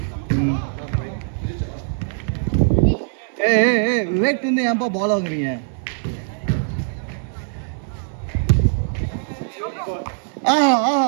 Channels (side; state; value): left; silent; 60 dB below the other